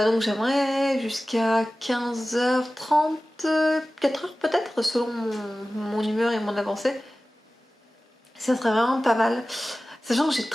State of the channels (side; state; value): both; normal; correlation 0.96